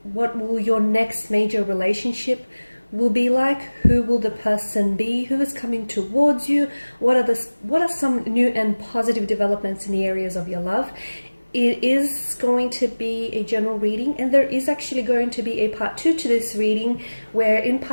what will your next major relationship will be like, who will the person be, who is coming towards you, what are some new and positive developments in the areas of your love. It is going to be a general reading, and there is actually going to be a part 2 to this reading, where in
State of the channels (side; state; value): both; inverted; correlation -1.00